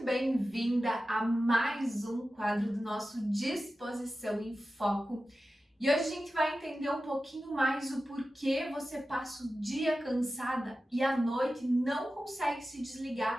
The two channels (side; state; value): both; normal; correlation 0.94